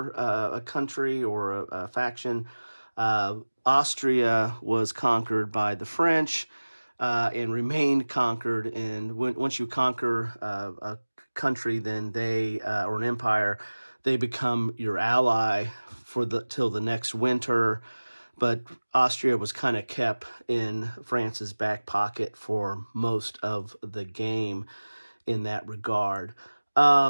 a country or a faction. Austria was conquered by the French and remained conquered. And once you conquer a country, then they or an empire, they become your ally till the next winter. But Austria was kind of kept in France's back pocket for most of the game in that regard.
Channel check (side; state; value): both; inverted; correlation -1.00